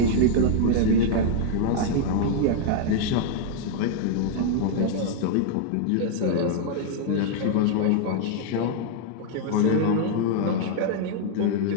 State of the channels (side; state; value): both; different; correlation -0.01